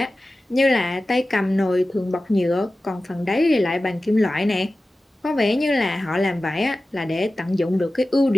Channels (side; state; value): both; normal; correlation 0.95